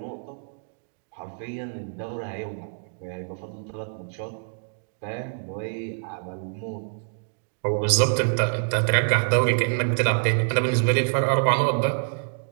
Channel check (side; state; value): left; silent; digital silence